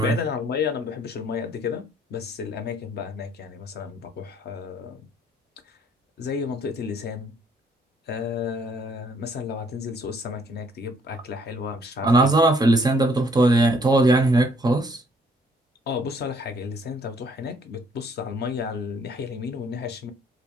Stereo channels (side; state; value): both; normal; correlation 0.63